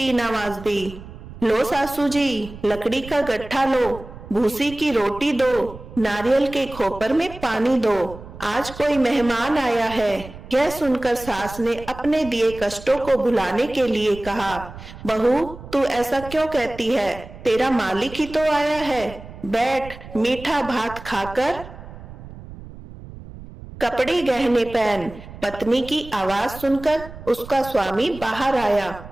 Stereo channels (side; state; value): right; noise; rumble, 15 dB below the sound